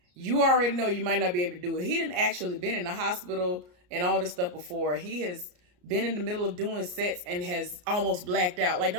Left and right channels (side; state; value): left; late; 34 ms